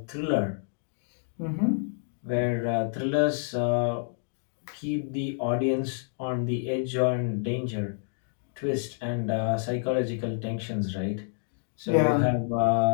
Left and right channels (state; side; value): silent; right; digital silence